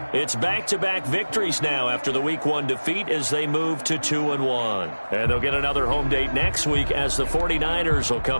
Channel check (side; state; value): both; inverted; correlation -1.00